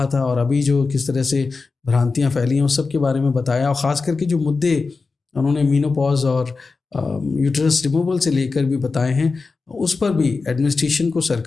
था, और अभी जो किस तरह से भ्रांतियाँ फैली हैं, उस सब के बारे में बताया, और ख़ास करके जो मुद्दे उन्होंने मीनोपॉज और यूट्रस रिमूवल से लेकर भी बताए हैं, उस पर भी एडमिनिस्ट्रेशन को,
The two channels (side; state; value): right; quieter; 4.2 dB